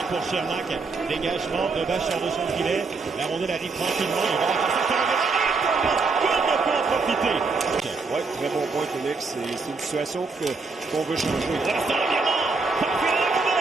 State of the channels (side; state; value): left; quieter; 4.2 dB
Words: pour Sherlock. Dégagement. Dobesch sort de son filet. La rondelle arrive tranquillement. Il va profiter. Oui, très bon point, Félix. C'est une situation qu'on veut changer.